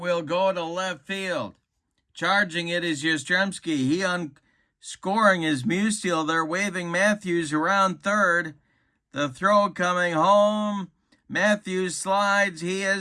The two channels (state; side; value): identical; both; correlation 1.00